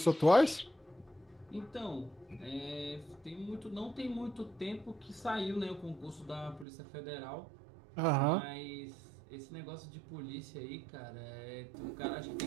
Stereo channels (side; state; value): left; drops out; at 6.7 s